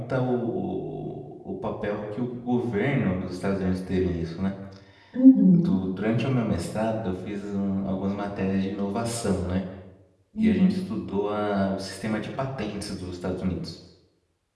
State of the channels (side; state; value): both; identical; correlation 1.00